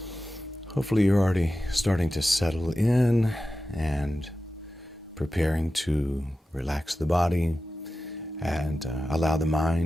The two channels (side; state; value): both; normal; correlation 0.93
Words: Hopefully you're already starting to settle in and preparing to relax the body and allow the